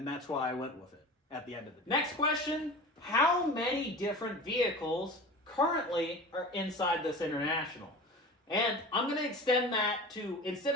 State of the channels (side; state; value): both; normal; correlation 0.35